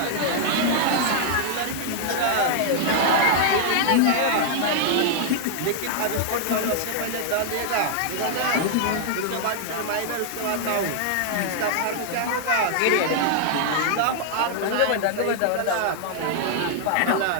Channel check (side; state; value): both; different; correlation -0.01